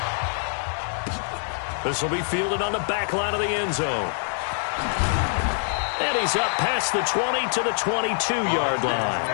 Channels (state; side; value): silent; right; digital silence